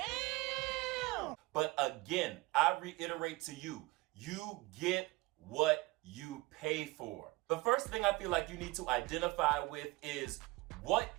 But again, I reiterate to you, you get what you pay for. The first thing I feel like you need to identify with is what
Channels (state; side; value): quieter; left; 21.7 dB